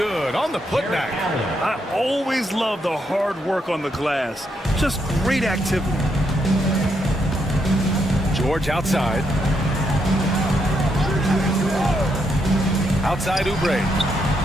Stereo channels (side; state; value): both; normal; correlation 0.78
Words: on the putback. I always love the hard work on the glass. Just great activity. George outside. Outside Oubre.